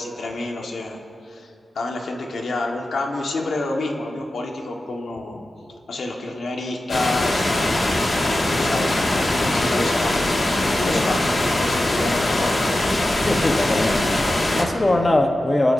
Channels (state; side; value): normal; both; correlation 0.93